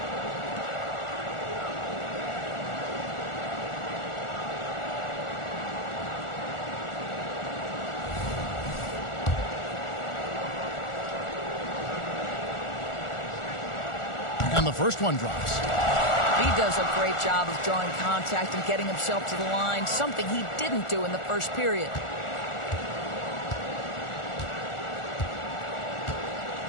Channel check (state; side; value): late; right; 1.4 ms